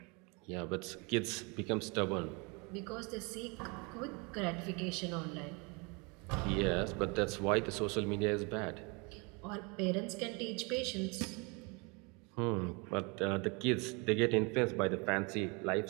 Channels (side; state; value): left; quieter; 30.3 dB